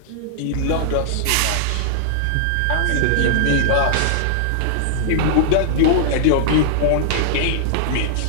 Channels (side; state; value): both; different; correlation -0.01